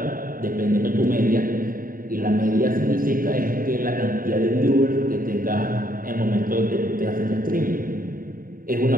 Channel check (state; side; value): late; left; 0.41 ms